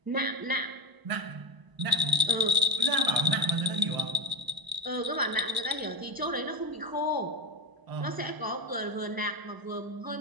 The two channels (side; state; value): left; late; 1.0 ms